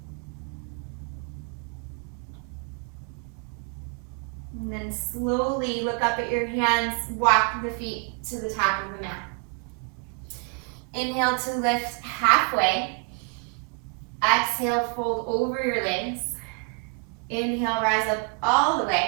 And then slowly look up at your hands, walk the feet to the top of the mat. Inhale to lift halfway. Exhale, fold over your legs. Inhale, rise up all the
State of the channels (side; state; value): left; quieter; 31.6 dB